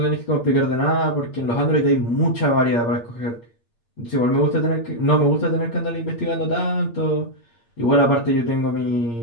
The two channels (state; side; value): late; right; 8.6 ms